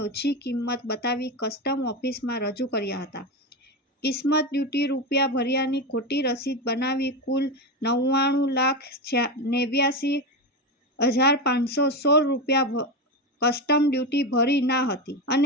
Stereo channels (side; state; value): both; normal; correlation 0.16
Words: ઓછી કિંમત બતાવી કસ્ટમ ઓફિસમાં રજૂ કર્યા હતા. કિસ્મત ડ્યુટી રૂપિયા ભર્યાની ખોટી રસીદ બનાવી કુલ ₹99,89,516 કસ્ટમ ડ્યુટી ભરી ના હતી